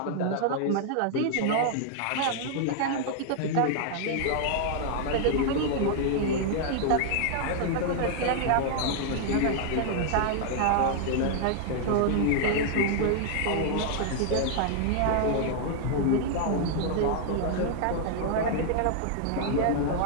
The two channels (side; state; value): both; different; correlation -0.01